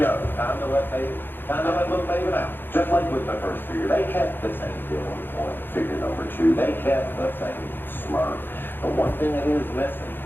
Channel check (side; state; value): right; late; 0.098 ms